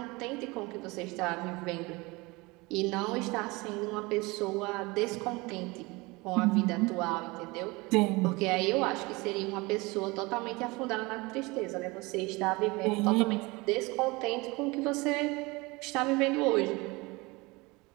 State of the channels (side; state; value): left; quieter; 24.2 dB